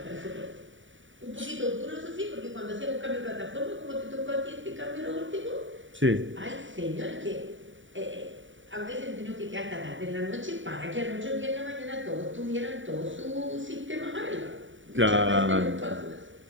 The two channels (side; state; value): left; late; 0.56 ms